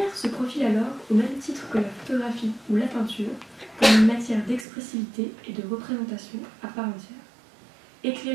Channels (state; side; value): drops out; left; at 4.7 s